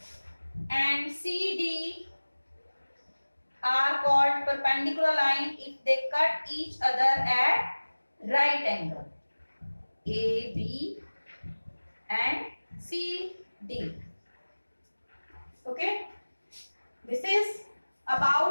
and CD are called perpendicular line if they cut each other at right angle. AB and CD. Okay. This is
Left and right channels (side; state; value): both; inverted; correlation -1.00